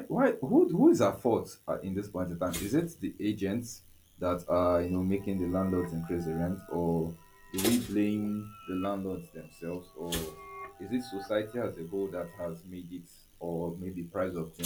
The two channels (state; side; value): identical; both; correlation 1.00